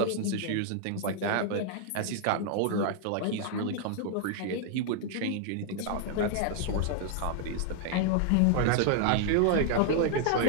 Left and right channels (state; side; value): different; both; correlation 0.00